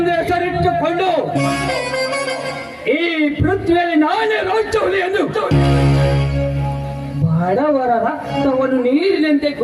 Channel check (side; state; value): both; identical; correlation 1.00